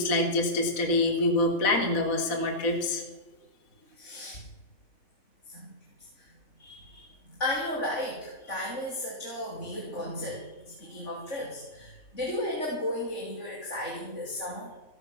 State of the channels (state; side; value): late; right; 4.0 ms